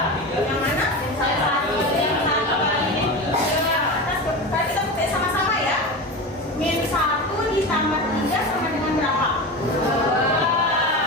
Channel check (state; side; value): normal; both; correlation 0.25